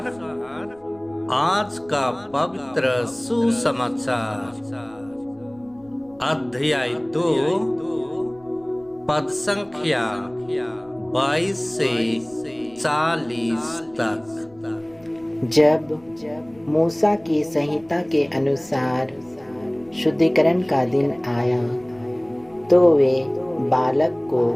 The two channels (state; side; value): noise; left; rumble, 28 dB below the sound